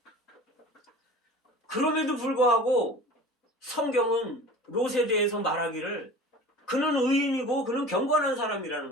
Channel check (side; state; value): both; normal; correlation 0.40